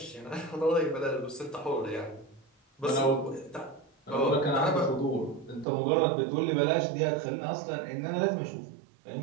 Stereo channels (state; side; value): drops out; left; at 5.7 s